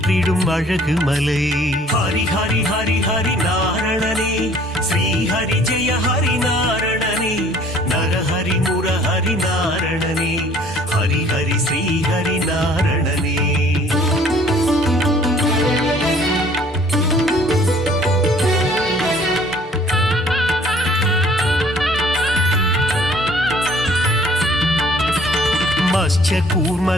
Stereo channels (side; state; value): both; normal; correlation 0.55